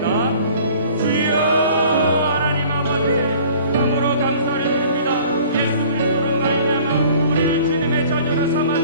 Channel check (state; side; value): inverted; both; correlation -0.50